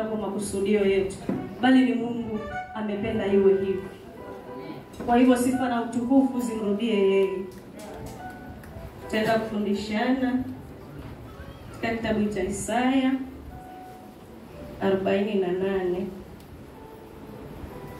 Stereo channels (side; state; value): both; identical; correlation 1.00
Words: kwa makusudio yetu, bali ni Mungu amependa iwe hivyo. Kwa hivyo sifa na utukufu zimrudie yeye. Tutaenda kufundishana katika kitabu cha Isaya 48.